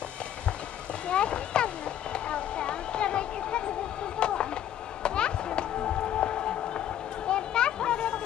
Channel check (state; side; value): quieter; right; 10.8 dB